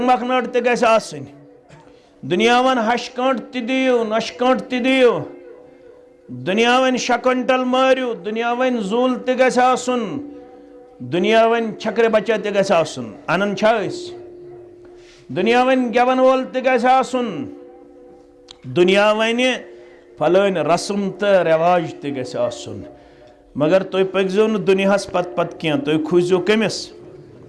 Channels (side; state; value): both; identical; correlation 1.00